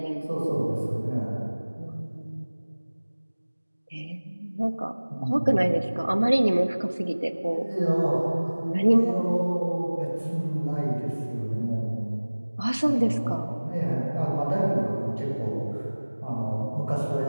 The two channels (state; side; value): inverted; both; correlation -1.00